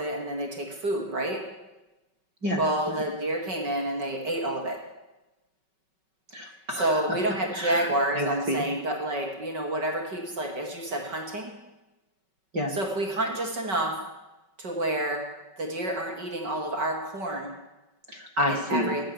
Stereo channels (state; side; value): late; left; 5.3 ms